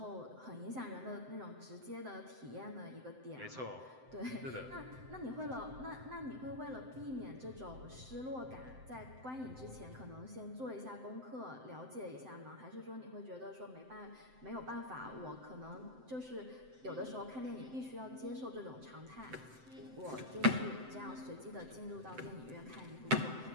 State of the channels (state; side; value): late; left; 7.8 ms